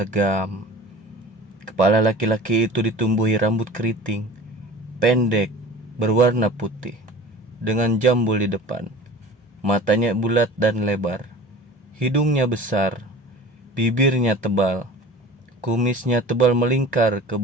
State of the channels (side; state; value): both; normal; correlation 0.41